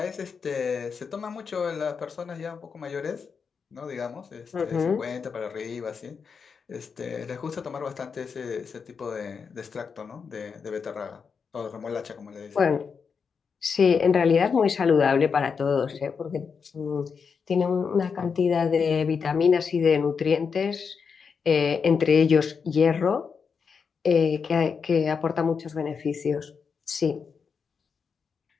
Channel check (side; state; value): right; quieter; 5.8 dB